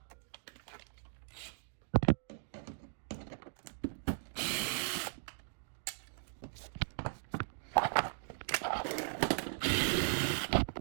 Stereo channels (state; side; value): silent; left; digital silence